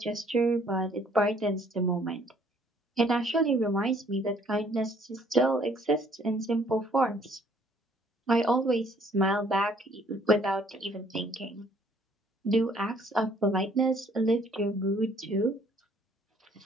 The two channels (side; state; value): both; normal; correlation 0.61